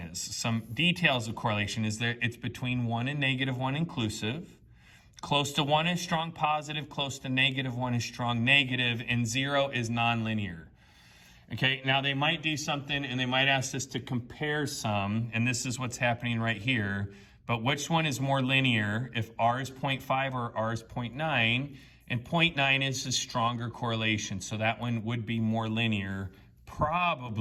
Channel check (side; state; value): both; identical; correlation 1.00